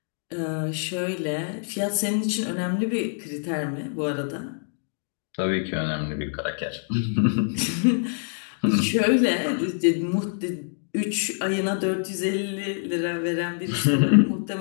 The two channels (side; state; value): right; silent; digital silence